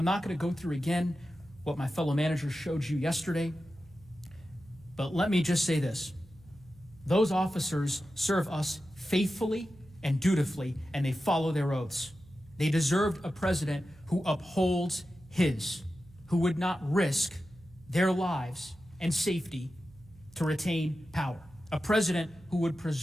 not going to go through again what my fellow managers showed you yesterday, but let me just say this. Those officers serve us faithfully and dutifully, and they follow their oaths. They deserved a president who upholds his, who would not risk their lives and safety to retain power. A president who would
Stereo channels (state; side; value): noise; right; hum, 24 dB below the sound